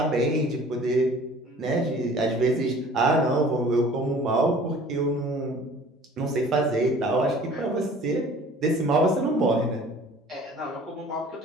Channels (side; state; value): both; normal; correlation 0.49